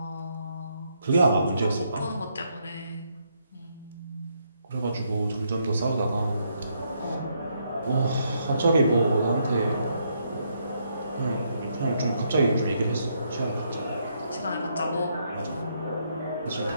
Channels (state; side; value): inverted; both; correlation -0.75